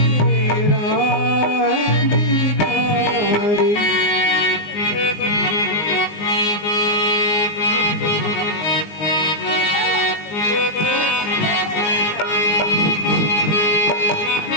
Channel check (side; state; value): right; late; 19 ms